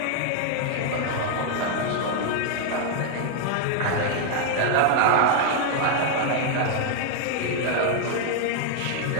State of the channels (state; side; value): different; both; correlation 0.00